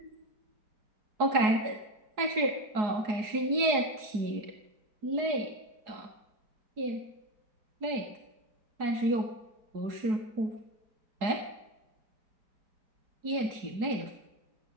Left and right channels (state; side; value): late; left; 4.8 ms